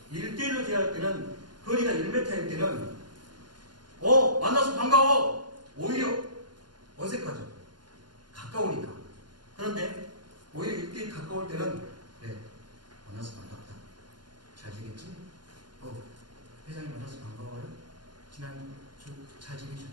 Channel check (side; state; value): left; late; 0.71 ms